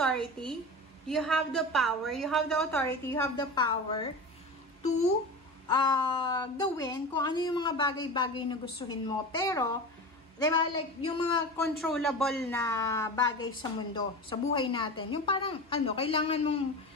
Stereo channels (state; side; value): normal; both; correlation 0.29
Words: you have the power, you have the authority, you have the power to gawin kung ano yung mga bagay-bagay na gustuhin mo. Pero, diba, like, yung mga controllable na bagay sa mundo, sa buhay natin, yung parang, kailangan mong